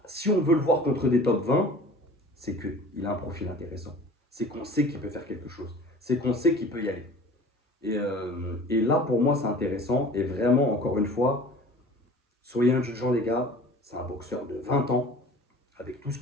si on veut le voir contre des top 20, c'est qu'il a un profil intéressant. C'est qu'on sait qu'il peut faire quelque chose. C'est qu'on sait qu'il peut y aller. Et là, pour moi, c'est intéressant. Et vraiment, encore une fois, soyez indulgents, les gars. C'est un boxeur de 20 ans, avec tout ce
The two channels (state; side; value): normal; both; correlation 0.43